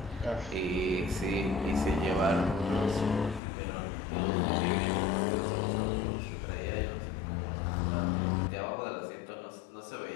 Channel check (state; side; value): drops out; right; at 3.4 s